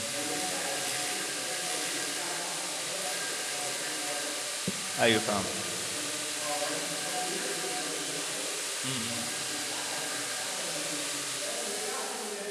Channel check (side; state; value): both; identical; correlation 1.00